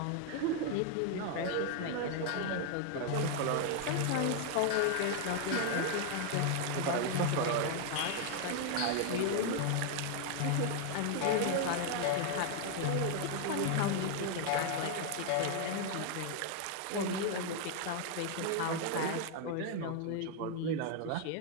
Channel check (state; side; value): different; both; correlation 0.00